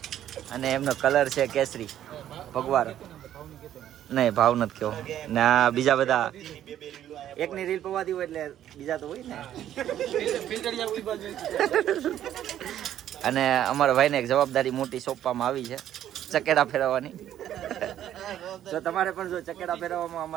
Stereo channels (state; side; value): quieter; left; 11.4 dB